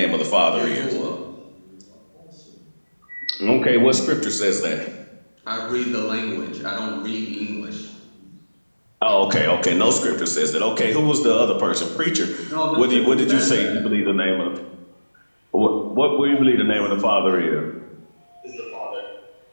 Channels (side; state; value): both; inverted; correlation -1.00